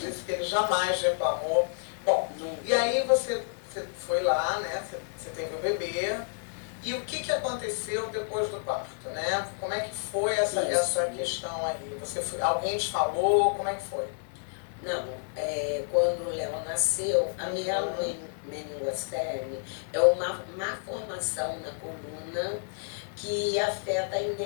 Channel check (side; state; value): right; silent; digital silence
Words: disse que ele jamais reclamou. Bom, e aí você foi lá, né? Você teve o bebê. E o que aconteceu depois do parto, né? Como é que foi essa questão aí? Alguém te falou? Como é que foi? Não, quando o Léo nasceu, a minha meningocele é uma má formação na coluna que afeta a